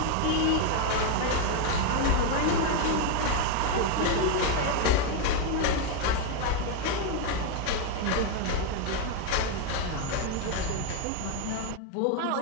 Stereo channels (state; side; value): different; both; correlation 0.02